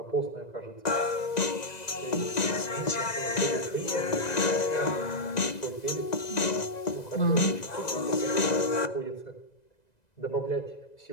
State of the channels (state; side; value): late; right; 2.0 ms